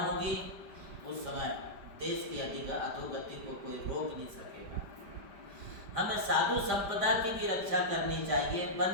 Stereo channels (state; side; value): late; left; 5.0 ms